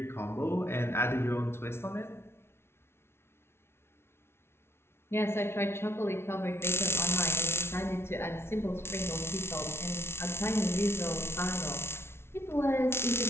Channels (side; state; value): right; late; 0.12 ms